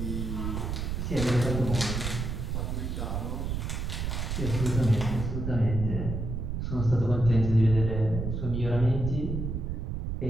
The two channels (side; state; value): right; noise; rumble, 3 dB below the sound